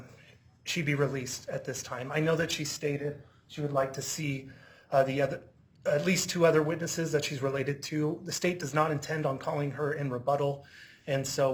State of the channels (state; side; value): identical; both; correlation 1.00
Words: she be released at this time. I know that she stated she would like to see at least 2 other witnesses that she's related to. The state does not intend on calling her in rebuttal, and so